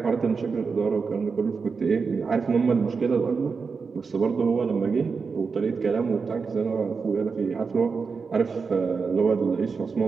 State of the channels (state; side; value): quieter; left; 5.1 dB